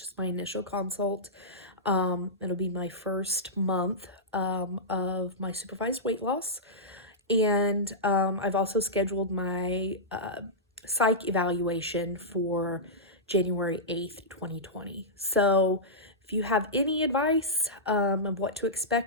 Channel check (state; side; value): normal; both; correlation -0.13